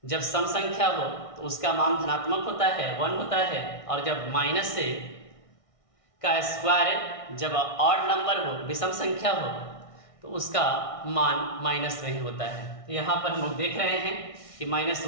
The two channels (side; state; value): right; late; 1.6 ms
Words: जब सम संख्या हो तो उसका मान धनात्मक होता है, 1 होता है, और जब माइनस से का स्क्वायर जब ऑड नंबर हो, विषम संख्या हो, तो उसका मान माइनस में ही होता है। तो यहाँ पर हम लोग देख रहे हैं कि